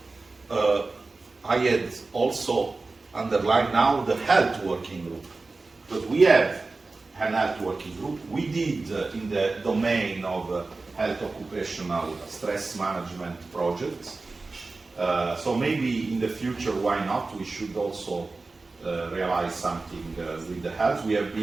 I had also underlined now the health working group, because we have an health working group. We did in the domain of health occupational stress management projects. So maybe in the future, why not? We should also realize something with the health. We have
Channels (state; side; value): quieter; left; 3.6 dB